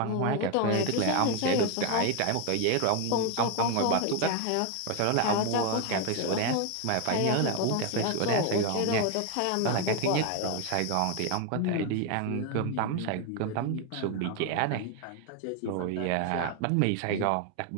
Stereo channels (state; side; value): different; both; correlation 0.01